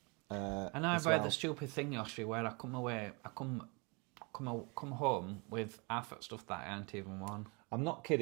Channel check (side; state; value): left; quieter; 30.5 dB